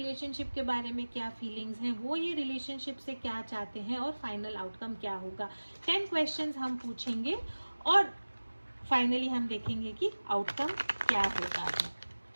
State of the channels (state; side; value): inverted; both; correlation -1.00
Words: के बारे में क्या फीलिंग्स हैं, वो ये रिलेशनशिप से क्या चाहते हैं और फाइनल आउटकम क्या होगा। 10 क्वेश्चंस हम पूछेंगे और फाइनली हम देखेंगे कि आउटकम क्या होता है।